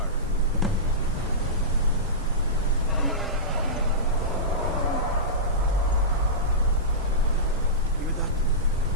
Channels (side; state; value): right; noise; hiss, 27 dB below the sound